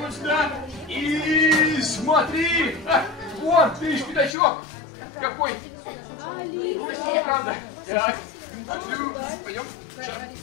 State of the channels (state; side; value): drops out; right; at 4.4 s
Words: сюда. И смотри. Вон, видишь, пятачок. Какой? Правда. Так. Пойдем. Шаг.